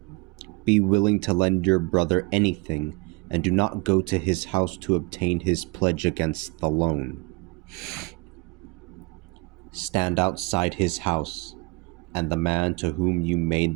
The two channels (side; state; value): left; quieter; 25.7 dB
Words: Be willing to lend your brother anything, and do not go to his house to obtain his pledge against the loan. Stand outside his house, and the man to whom you